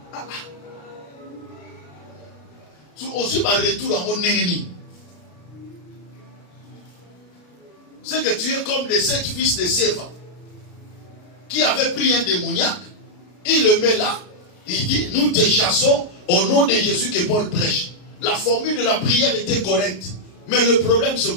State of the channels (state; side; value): late; right; 33 ms